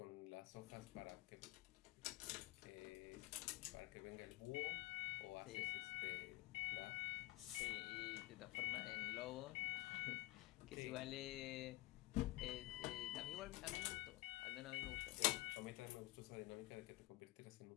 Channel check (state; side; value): quieter; right; 19.5 dB